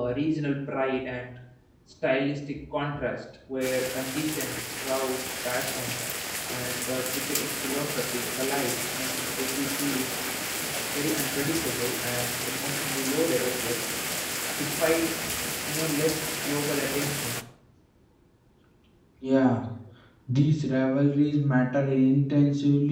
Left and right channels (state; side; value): identical; both; correlation 1.00